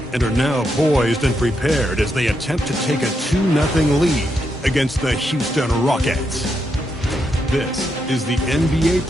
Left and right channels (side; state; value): both; normal; correlation 0.82